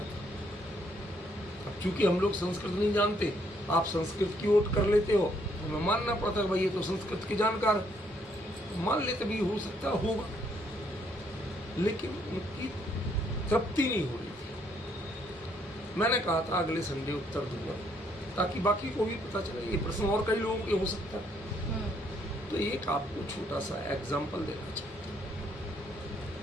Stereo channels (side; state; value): both; normal; correlation 0.70